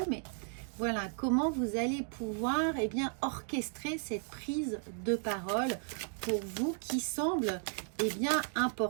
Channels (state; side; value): silent; left; 55 dB below the other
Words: mais voilà comment vous allez pouvoir orchestrer cette prise de parole pour vous, qui semble